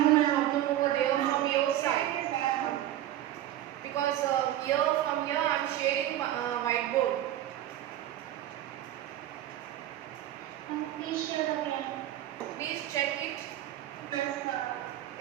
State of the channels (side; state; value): left; quieter; 12.8 dB